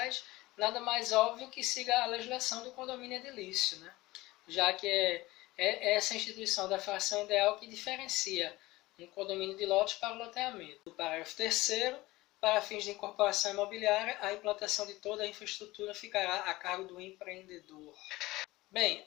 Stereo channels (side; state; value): right; quieter; 19.4 dB